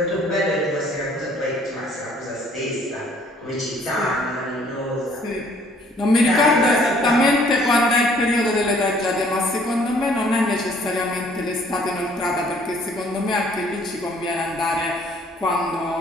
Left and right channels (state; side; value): normal; both; correlation 0.59